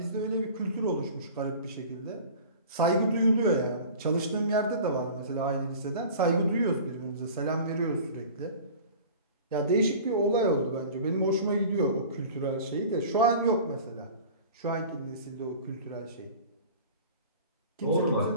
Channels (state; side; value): inverted; both; correlation -0.41